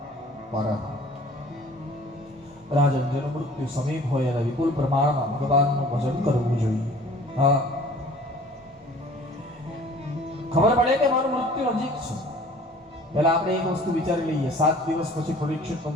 પરઃ. રાજન, જેનું મૃત્યુ સમીપ હોય અને વિપુલ પ્રમાણમાં ભગવાનનું ભજન કરવું જોઈએ. હા, ખબર પડે કે મારું મૃત્યુ નજીક છે. પહેલા આપણે એક વસ્તુ વિચારી લઈએ, 7 દિવસ પછી પરીક્ષિતનું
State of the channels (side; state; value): both; normal; correlation 0.49